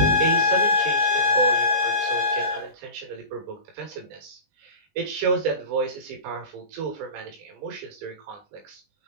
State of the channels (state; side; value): late; left; 20 ms